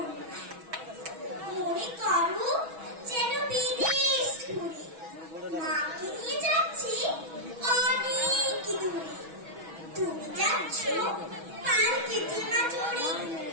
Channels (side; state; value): left; late; 6.2 ms